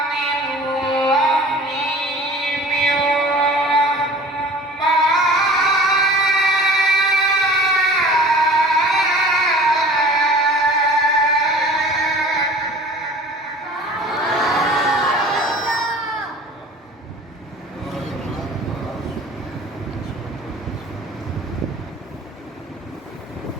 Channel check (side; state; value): both; normal; correlation 0.44